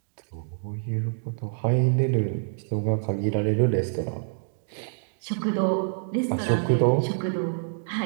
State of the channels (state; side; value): silent; left; digital silence